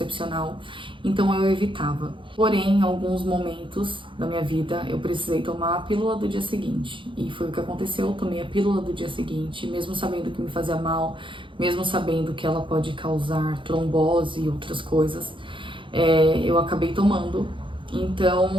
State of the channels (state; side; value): late; left; 0.24 ms